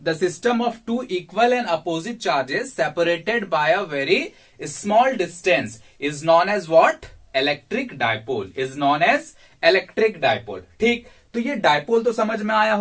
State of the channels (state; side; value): identical; both; correlation 1.00